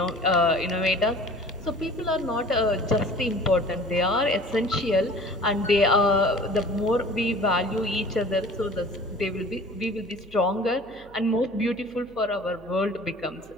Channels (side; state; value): right; noise; hum, 23 dB below the sound